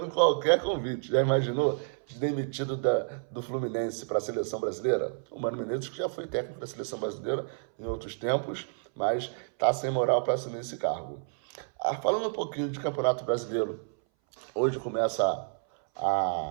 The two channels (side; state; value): left; silent; 58 dB below the other